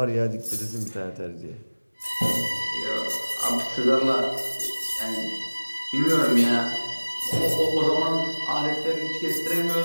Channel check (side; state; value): both; inverted; correlation -1.00